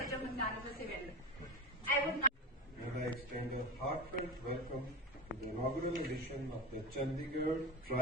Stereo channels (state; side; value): normal; both; correlation 0.22